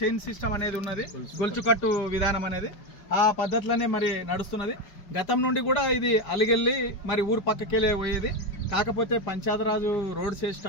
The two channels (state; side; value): late; right; 5.2 ms